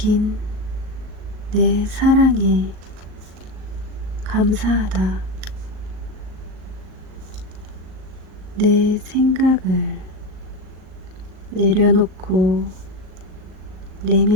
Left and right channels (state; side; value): late; left; 38 ms